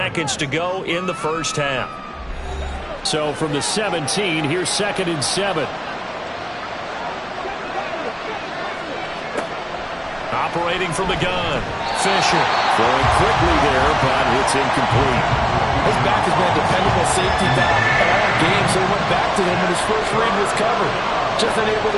to go in the first half. So from the 17, here's 2nd and 7. Operating from the gun. Fisher. Throwing quickly there, but it's incomplete. His back has been a dependable safety valve all game, so he went back to him when his first read was covered. Just unable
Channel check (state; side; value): identical; both; correlation 1.00